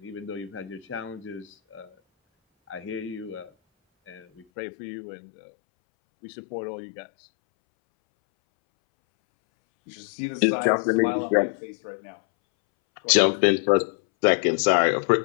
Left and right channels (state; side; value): drops out; right; at 4.5 s